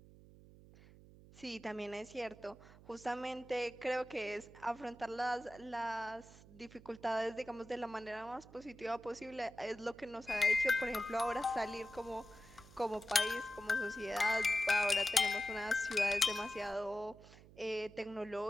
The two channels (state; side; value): noise; right; hum, 21 dB below the sound